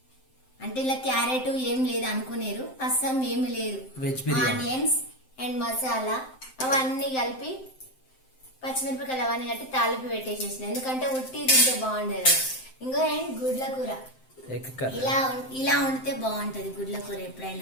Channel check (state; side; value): late; right; 7.7 ms